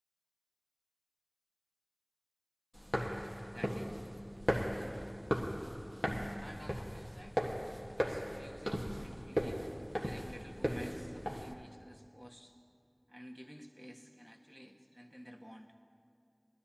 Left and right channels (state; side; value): identical; both; correlation 1.00